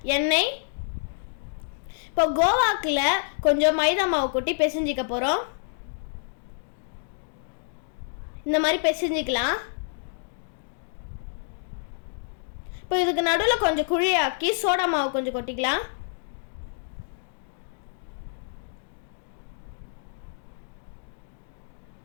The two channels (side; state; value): right; silent; digital silence